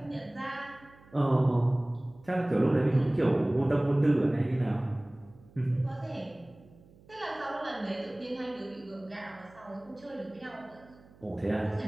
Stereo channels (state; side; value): noise; right; hum, 25 dB below the sound